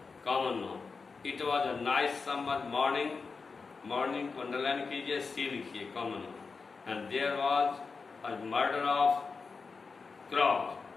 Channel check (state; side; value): quieter; right; 4.7 dB